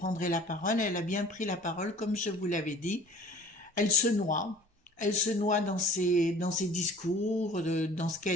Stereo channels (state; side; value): normal; both; correlation 0.47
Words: la parole, elle a bien pris la parole, comme je vous l'avais dit. Elle se noie dans ses discours, dans ce